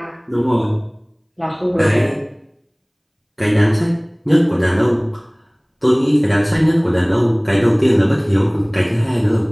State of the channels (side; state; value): both; identical; correlation 1.00